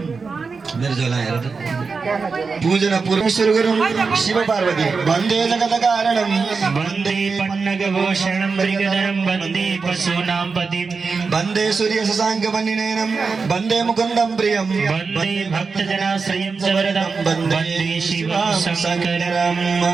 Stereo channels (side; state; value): left; quieter; 4.8 dB